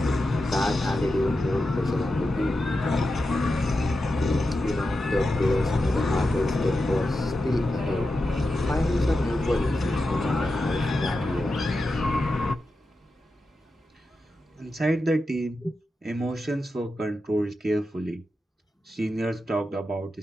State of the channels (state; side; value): normal; both; correlation 0.90